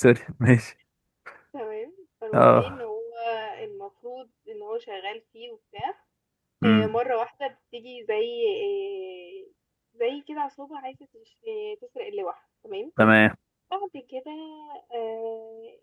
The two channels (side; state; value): both; identical; correlation 1.00